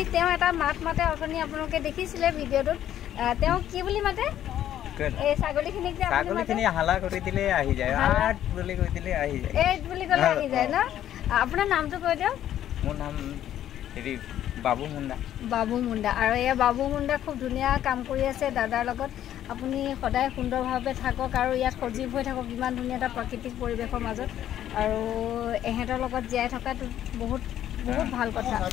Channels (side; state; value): right; quieter; 11.4 dB